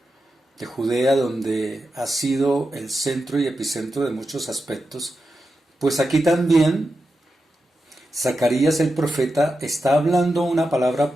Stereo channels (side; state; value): both; normal; correlation 0.90